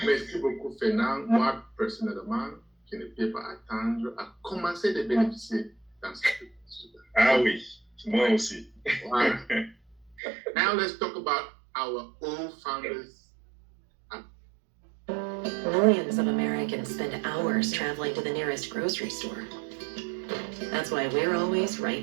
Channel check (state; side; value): drops out; left; at 10.2 s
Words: Merci beaucoup, Fernand. Moi, personnellement, je ne peux pas attendre à commencer de bénéficier dans ce processus. Ah oui, moi aussi. Voilà. Now let's talk about our old founders. Millions of Americans spend hours traveling to the nearest grocery store. That's why we're always